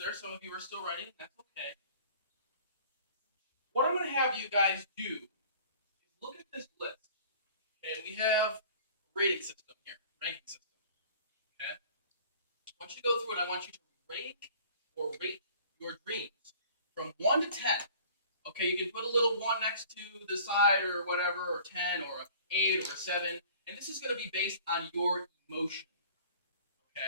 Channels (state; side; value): inverted; both; correlation -0.49